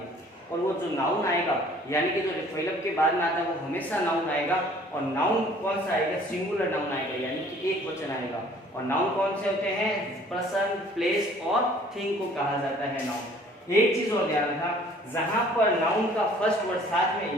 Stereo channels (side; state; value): both; normal; correlation 0.54